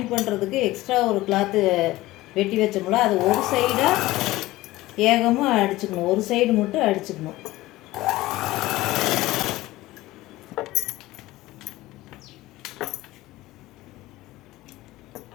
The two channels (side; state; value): right; quieter; 17.8 dB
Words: பண்ணுறதுக்கு எக்ஸ்ட்ரா ஒரு கிளாத்து வெட்டி வச்சோம்ல, அது ஒரு சைடாக ஏகமாக அடிச்சுக்கணும், ஒரு சைடு மட்டும் அடிச்சுக்கணும்.